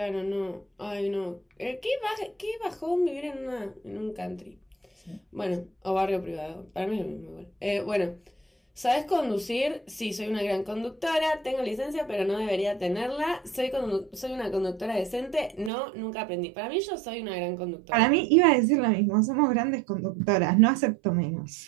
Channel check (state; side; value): drops out; left; at 15.7 s